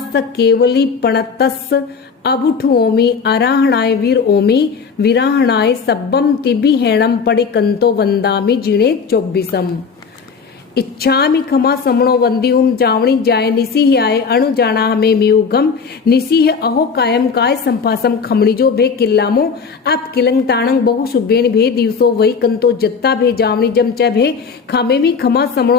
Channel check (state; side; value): quieter; right; 5.6 dB